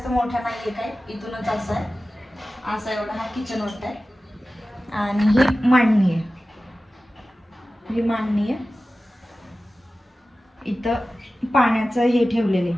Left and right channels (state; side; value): normal; both; correlation 0.95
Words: मोठा नाहीये काय, इथूनच असं आहे, असा एवढा हा किचन मोठा आहे. आणि ही मांडणी आहे, ही मांडणी आहे. इथं पाण्याचं हे ठेवलेले,